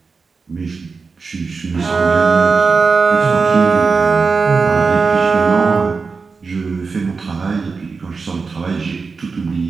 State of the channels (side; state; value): left; quieter; 4.7 dB